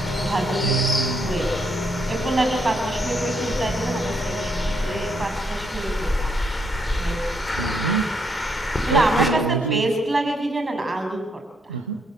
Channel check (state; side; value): normal; both; correlation 0.74